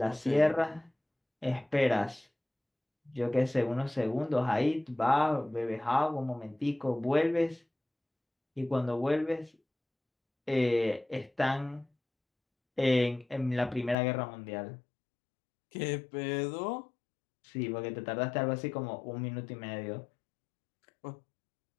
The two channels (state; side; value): drops out; right; at 14.0 s